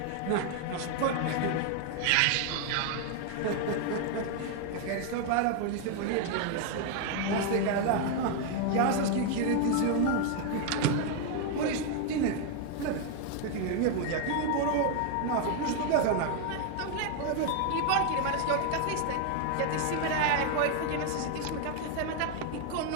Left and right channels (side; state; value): both; different; correlation 0.01